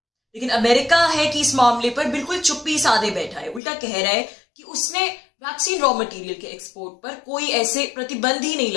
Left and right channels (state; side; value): drops out; right; at 3.6 s